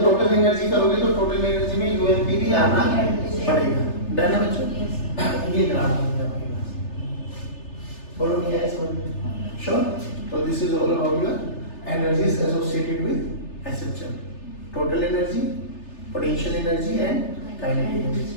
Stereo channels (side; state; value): right; late; 3.3 ms